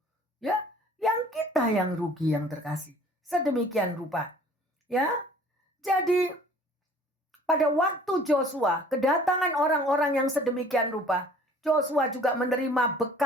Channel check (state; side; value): normal; both; correlation 0.51